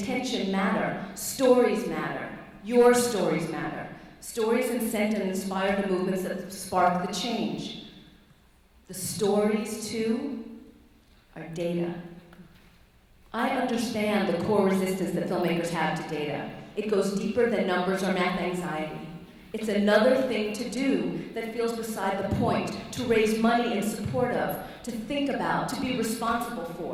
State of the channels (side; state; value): both; identical; correlation 1.00